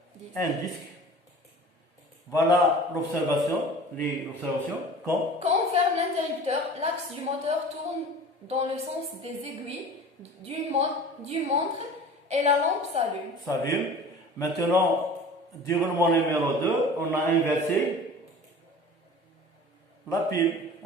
disque. Voilà l'observation, Quand on ferme l'interrupteur, l'axe du moteur tourne dans le sens des aiguilles du montre et la lampe s'allume. Maintenant, déroulement numéro 2, on a inversé la pile.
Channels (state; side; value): normal; both; correlation 0.41